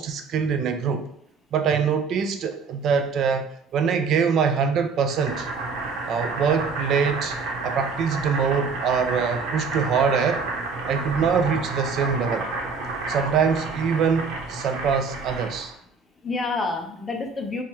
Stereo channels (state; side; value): quieter; left; 5.1 dB